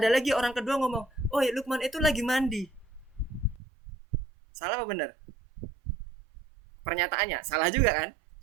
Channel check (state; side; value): drops out; left; at 3.6 s